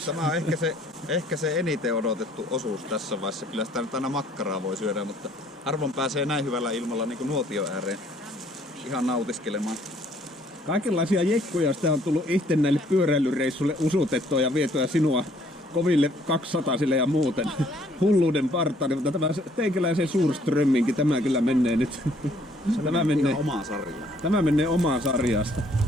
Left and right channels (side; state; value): both; normal; correlation 0.62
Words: Tämä on ehkä se eniten odotettu osuus tässä vaiheessa. Kyllä sitä nyt aina makkaraa voi syödä, mutta harvoin pääsee näin hyvällä ilmalla niin kuin nuotion ääreen ihan nautiskelemaan. Kaikenlaisia jekkuja sitä on tullut itse näille pyöräilyreissuille usutettua ja vietyä sinua koville 200-sille ja muuten hulluuden partaani, mutta tämä teikäläisen Suurströmminkin, tämä kyllä menee nyt. Tämä menee omaan sarjaan. Tämä menee omaan sarjasta.